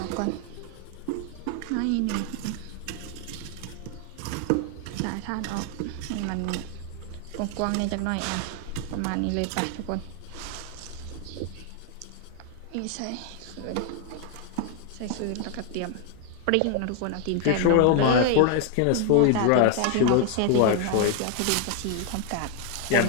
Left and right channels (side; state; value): both; different; correlation 0.00